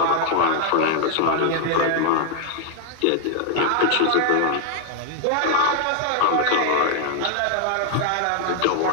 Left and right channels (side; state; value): both; different; correlation 0.00